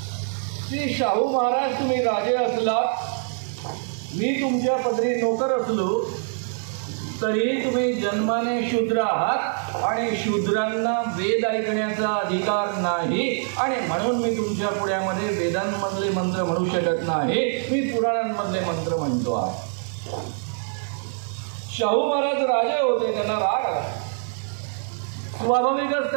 की शाहू महाराज, तुम्ही राजे असलात, मी तुमच्या पदरी नोकर असलो तरी तुम्ही जन्माने शूद्र आहात आणि शूद्रांना वेद ऐकण्याचा अधिकार नाही आणि म्हणून मी तुमच्या पुढ्यामध्ये वेदांमधले मंत्र म्हणू शकत नाही, मी पुराणांमधले मंत्र म्हणतो आहे। शाहू महाराज राजे होते, त्यांना राग आला। स्वाभाविकच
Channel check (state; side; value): silent; left; 62 dB below the other